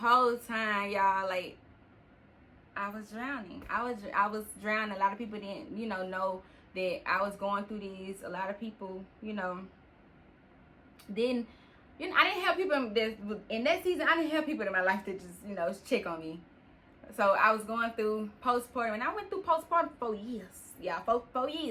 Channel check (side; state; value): both; identical; correlation 1.00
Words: time, y'all, like, I was drowning. I was drowning. A lot of people didn't, know that I was going through these. A lot of people, didn't. I didn't have people in that season. I didn't have people in my life that just, check on me. So I was going through postpartum, and I went through postpartum for 4 years. Yeah, 4